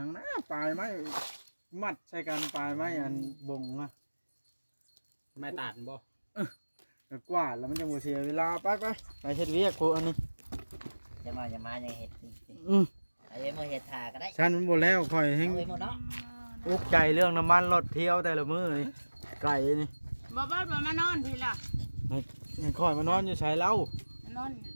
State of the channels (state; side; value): inverted; both; correlation -1.00